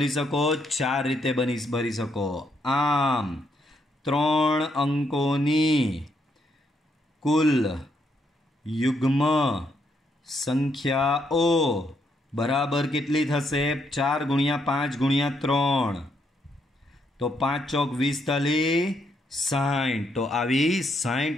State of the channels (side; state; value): both; normal; correlation 0.75